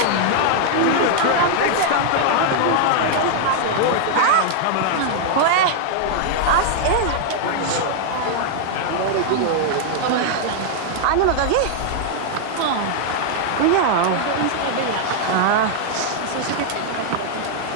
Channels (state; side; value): different; both; correlation -0.01